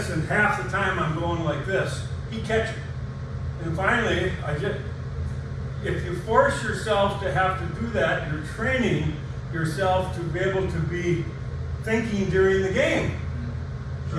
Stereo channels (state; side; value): identical; both; correlation 1.00